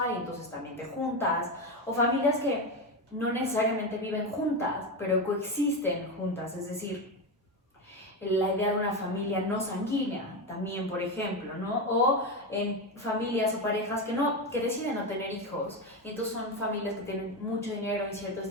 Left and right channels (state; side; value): normal; both; correlation 0.14